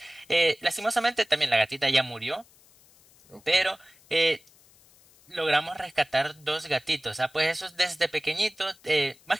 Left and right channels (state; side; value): noise; left; hiss, 28 dB below the sound